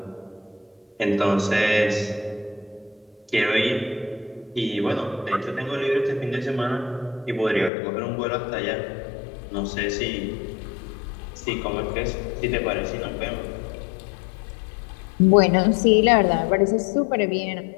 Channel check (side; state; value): right; drops out; at 7.7 s